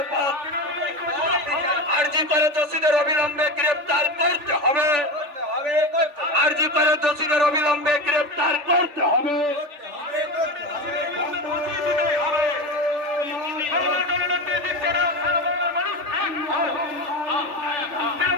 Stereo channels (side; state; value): left; late; 3.4 ms